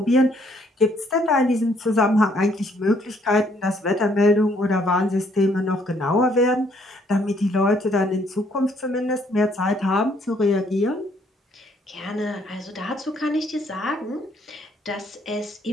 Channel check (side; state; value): both; normal; correlation 0.66